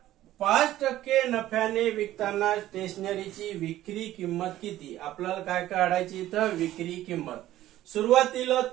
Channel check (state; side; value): quieter; left; 14.2 dB